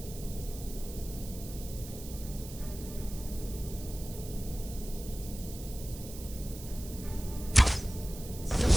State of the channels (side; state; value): right; noise; hiss, 13 dB below the sound